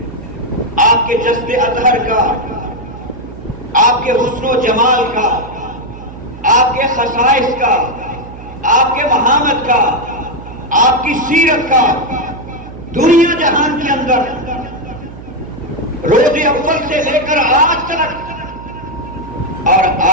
آپ کے جسد اطہر کا، آپ کے حسن و جمال کا، آپ کے خصائص کا، آپ کے محامد کا، آپ کی سیرت کا، دنیا جہان کے اندر روز اول سے لے کر آج تک اور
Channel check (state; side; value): noise; right; hum, 15 dB below the sound